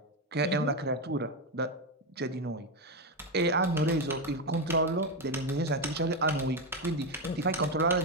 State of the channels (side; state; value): both; normal; correlation 0.09